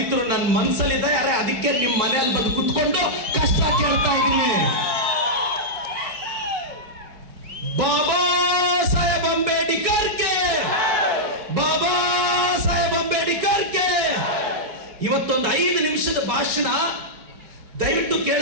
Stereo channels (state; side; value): late; left; 4.7 ms